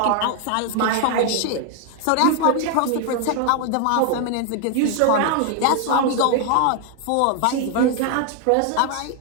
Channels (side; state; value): both; different; correlation 0.00